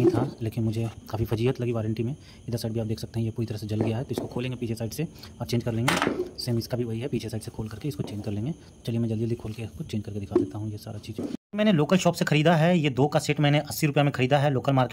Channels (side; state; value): both; identical; correlation 1.00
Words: था, लेकिन मुझे काफ़ी फजीहत लगी वारंटी में। इधर साइड भी आप देख सकते हैं ये पूरी तरह से जल गया है, तो इसको खोलेंगे पीछे साइड से और चेंज कर लेंगे। सेम इसका भी वही है, पीछे साइड से खोल करके इसको चेंज कर लेंगे। चलिए मैं जल्दी जल्दी खोल के इसको चेंज करके दिखा देता हूँ ये सारा चीज़। मैंने लोकल शॉप से ख़रीदा है, ये 2 का सेट मैंने 80 रुपये में ख़रीदा है लोकल